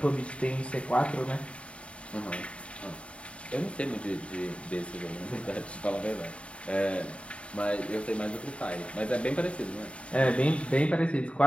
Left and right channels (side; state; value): right; late; 0.061 ms